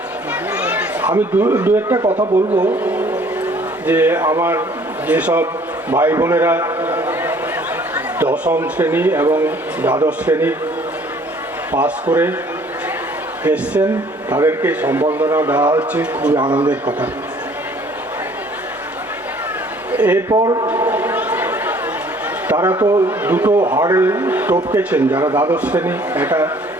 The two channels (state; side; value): normal; both; correlation 0.56